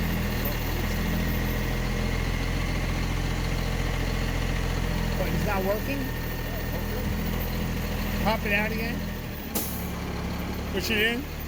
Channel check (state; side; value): identical; both; correlation 1.00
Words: What, it's not working? Pop it out again. Push it in.